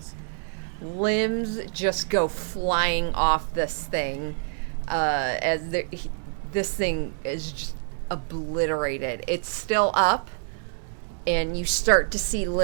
Limbs just go flying off this thing this thing is just obliterated. It's still up, and you start to see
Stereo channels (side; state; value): left; silent; digital silence